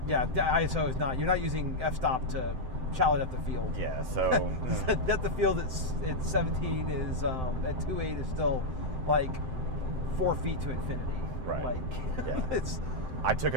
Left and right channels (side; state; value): left; late; 7.8 ms